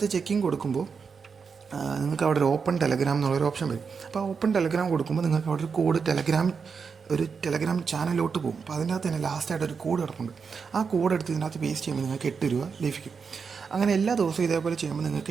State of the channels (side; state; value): left; quieter; 5.7 dB